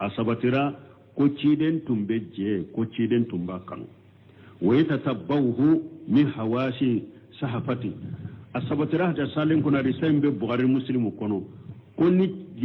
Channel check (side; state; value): both; identical; correlation 1.00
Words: ko ciden tumbe je ko ciden tumba kan wa yatatabbahu min hawashi sahafati asabatira da salin kuna risambe bukhari muslim kono ko ni